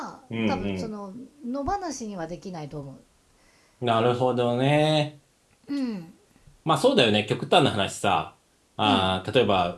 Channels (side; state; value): both; identical; correlation 1.00